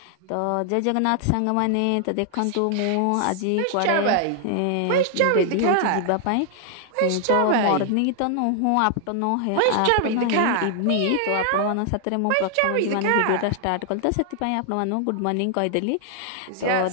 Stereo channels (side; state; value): both; different; correlation 0.00